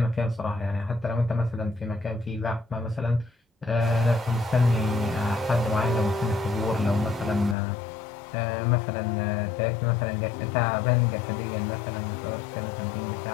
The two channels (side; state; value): right; drops out; at 7.6 s